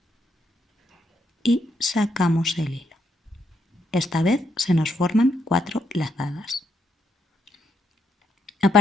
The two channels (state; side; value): normal; both; correlation 0.77